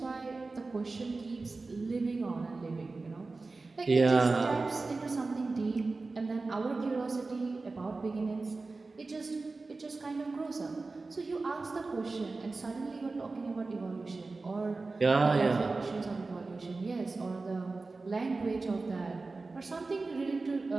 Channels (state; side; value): quieter; left; 3.7 dB